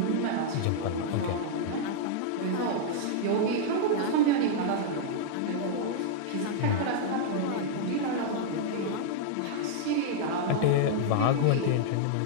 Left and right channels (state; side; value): different; both; correlation -0.01